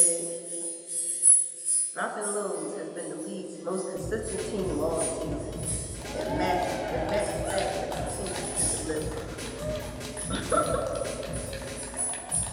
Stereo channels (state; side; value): identical; both; correlation 1.00